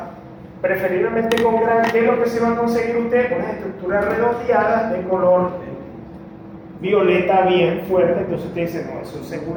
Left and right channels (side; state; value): both; identical; correlation 1.00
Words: preferiblemente con Gram, ¿qué es lo que se va a conseguir usted? Unas estructuras redondeadas de color violeta bien fuerte. Entonces usted dice, no, eso